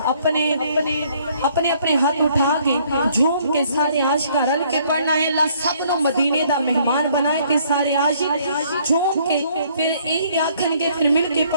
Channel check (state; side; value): inverted; both; correlation -0.63